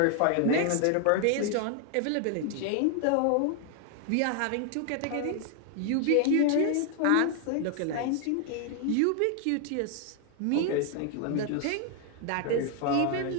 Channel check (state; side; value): different; both; correlation 0.00